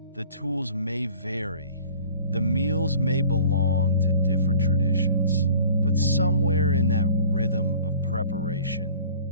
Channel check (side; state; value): both; inverted; correlation -0.47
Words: the tools may vary, the meals may belong to different traditions. But somewhere in that rhythm of